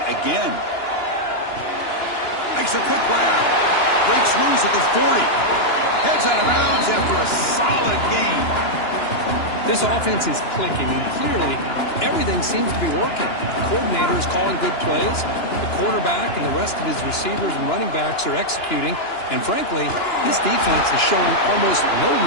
again. Makes a quick grab. Breaks loose at the 40. Heads out of bounds after a solid gain. This offense is clicking, and clearly everything seems to be working. The coordinator is calling good plays. The quarterback and the rest of his receivers and running backs are executing. And frankly, this defense is showing almost no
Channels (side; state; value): right; late; 2.9 ms